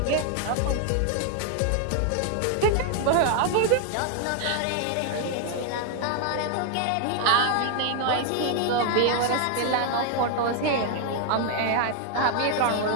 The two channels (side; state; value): both; different; correlation 0.00